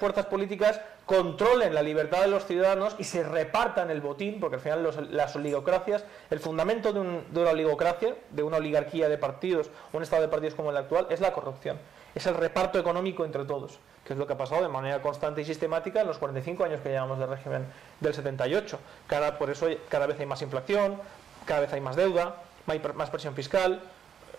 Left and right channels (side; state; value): left; quieter; 8.2 dB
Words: políticas controlen la libertad de los ciudadanos y se repartan el botín, porque al final las oligocracias, el fundamento de una oligocracia, de una oligarquía de partidos, un estado de partidos como el actual, es la corrupción. Es el reparto económico entre todos, que es lo que ha pasado de manera constante y sistemática en los 45 años que llevamos de régimen del 78. Por eso cada vez hay más inflación, cada vez hay más deuda, más presión fiscal,